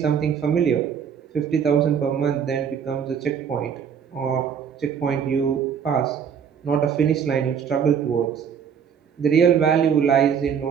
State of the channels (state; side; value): quieter; left; 7.5 dB